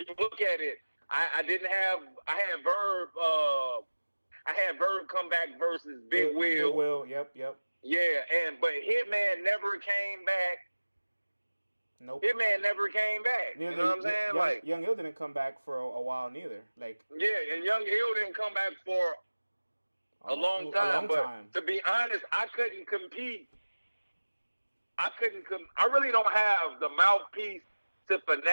you look at it, I had Verb come back versus Big Will. Big Will, yep. Yeah, but Hitman never came back. Nope. Hitman never came back. You know what I'm saying? Young Ill didn't come back for a while neither. Like, yeah, and Young Ill didn't come back for a long time. But to be honest, I couldn't compete. I really don't have the mouthpiece to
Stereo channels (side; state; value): both; inverted; correlation -1.00